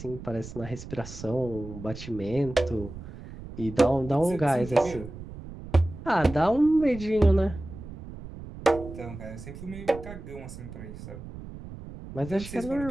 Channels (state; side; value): noise; right; rumble, 13 dB below the sound